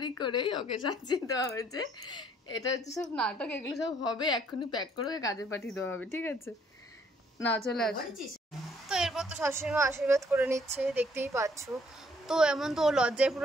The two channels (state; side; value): normal; both; correlation 0.64